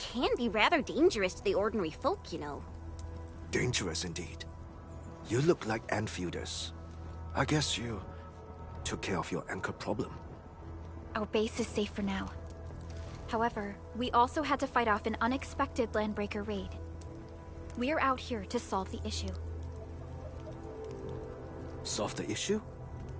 be rather dangerous to the ordinary folk, you know. Dangerous indeed. You look like Enfielders. I guess you took care of your anchor problem. Our base is safe for now. However, we also had to fight off an unexpected landbreaker raid. We are out here to solve the issue. Solve the issue?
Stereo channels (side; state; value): both; identical; correlation 1.00